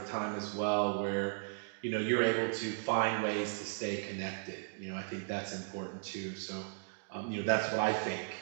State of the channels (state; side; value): silent; left; digital silence